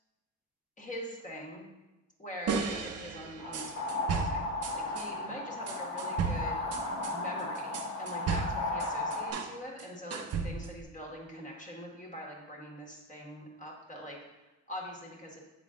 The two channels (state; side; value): normal; both; correlation 0.13